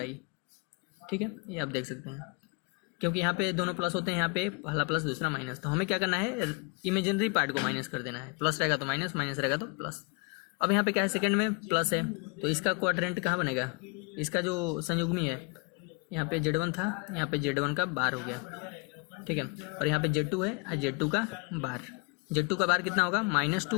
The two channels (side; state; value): right; quieter; 31.8 dB